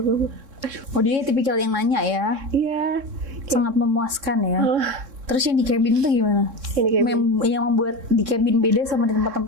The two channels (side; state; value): left; late; 3.6 ms